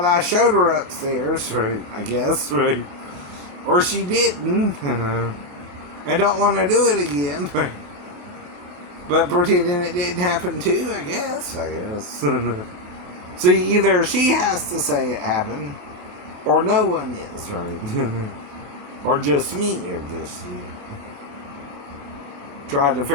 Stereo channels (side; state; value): left; late; 28 ms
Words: I showed her upstairs, right, I guess, right? Or she didn't. And don't want to do it again, right? But pretending it didn't happen too, I guess. See, either she has to say it happened, or no one is, right? Or just me, or just you. Trying to